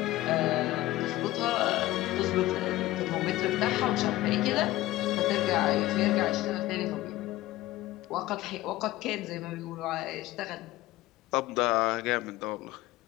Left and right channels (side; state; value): right; quieter; 16.8 dB